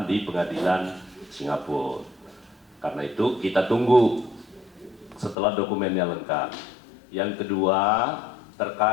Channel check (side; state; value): right; drops out; at 5.4 s